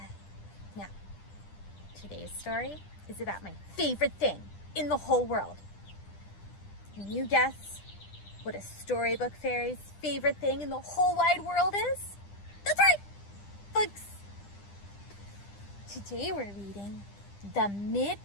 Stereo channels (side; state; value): right; late; 10 ms